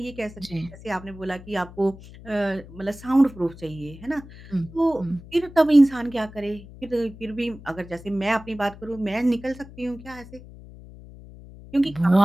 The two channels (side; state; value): left; noise; hum, 18 dB below the sound